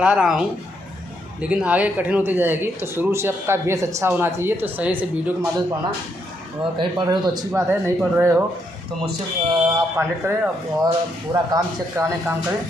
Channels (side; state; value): both; normal; correlation 0.76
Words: रहा हूँ, लेकिन आगे कठिन होती जाएगी। तो शुरू से आपका बेस अच्छा होना चाहिए। तो सही से वीडियो के माध्यम से पढ़ना, और कहीं पढ़ रहे हो तो अच्छी बात है, नहीं पढ़ रहे हो तो मुझसे आप कॉन्टेक्ट करें और पूरा काम चेक कराने का काम करें,